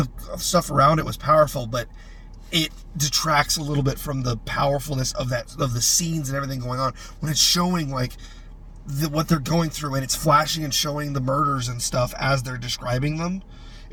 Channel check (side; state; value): both; identical; correlation 1.00